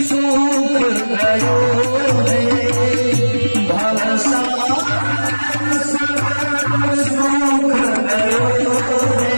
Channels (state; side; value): inverted; both; correlation -1.00